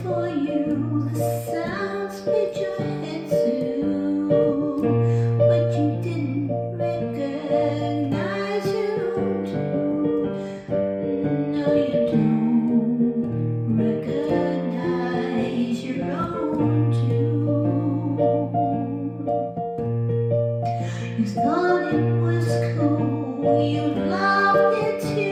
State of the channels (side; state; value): both; identical; correlation 1.00